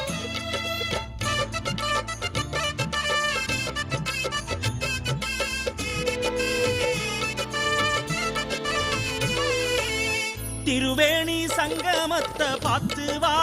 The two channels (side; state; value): both; identical; correlation 1.00